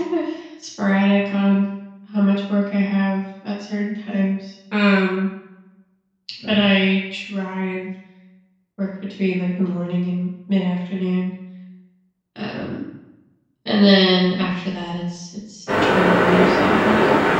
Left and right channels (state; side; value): identical; both; correlation 1.00